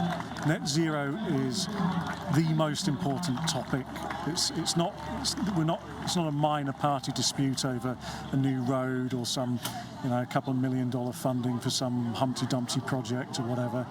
net zero is the most important topic. It's not a minor party dispute over a new road or some a couple of $1 million funding for some Humpty Dumpty project or whatever.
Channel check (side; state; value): both; identical; correlation 1.00